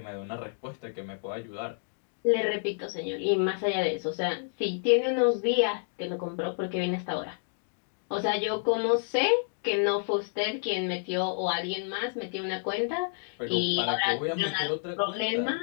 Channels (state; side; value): silent; right; digital silence